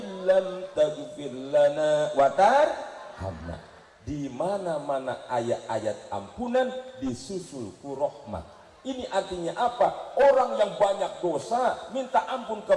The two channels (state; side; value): identical; both; correlation 1.00